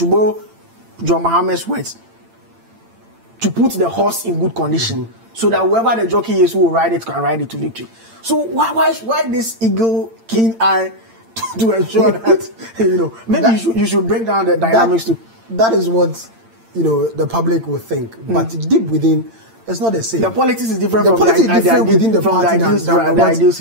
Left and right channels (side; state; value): left; late; 8.8 ms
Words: borrow John Mohammed's words, to put the horse in good condition, so that whoever the jockey is who will ride it can ride it to victory. So why this eagle keen eye to ensure that maybe you should break down the dynamics too. That is what the public will think, but deep within, it's not the same. The politics is different. The politics is different within the party than ideal